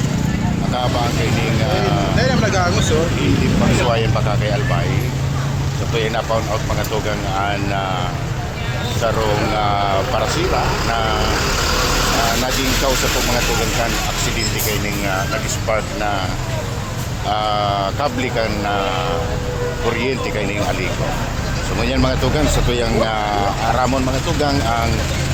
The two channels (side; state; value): both; identical; correlation 1.00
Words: nakabang kining Dahil naman nag-aangos, oh. hindi pagsuwayan pagkakayalbay so ito yung na-found out mga tugang an sarong parasira na naging kausa po mga tugang kan aksidente kining nag-spark na kable kan kuryente kining aliko. So ngunyan mga tugang sa tuyang aramon mga tugang ang